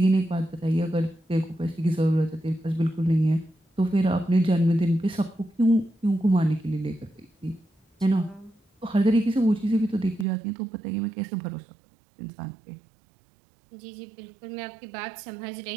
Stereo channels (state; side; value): drops out; left; at 10.2 s